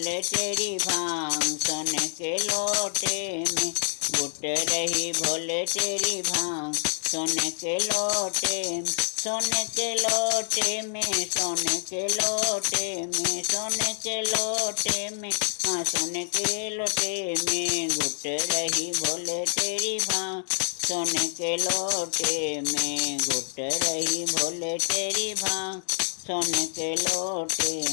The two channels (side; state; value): right; silent; digital silence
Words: तेरी भांग सोने के लोटे में, घुट रही भोले तेरी भांग सोने के लोटे में, सोने के लोटे में, सोने के लोटे में, सोने के लोटे में, हाँ सोने के लोटे में, घुट रही भोले तेरी भांग सोने के लोटे में, घुट रही भोले तेरी भांग सोने के लोटे